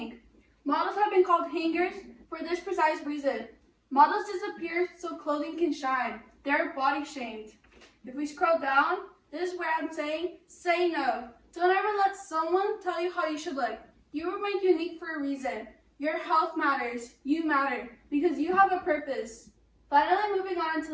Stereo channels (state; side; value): identical; both; correlation 1.00